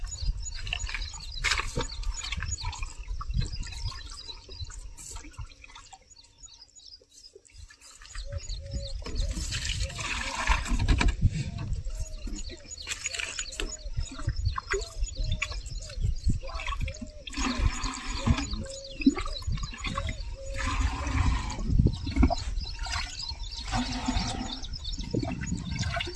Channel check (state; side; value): identical; both; correlation 1.00